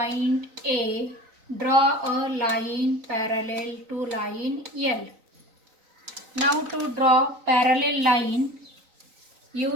A, draw a line parallel to line L. Now to draw parallel line,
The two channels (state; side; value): late; left; 3.9 ms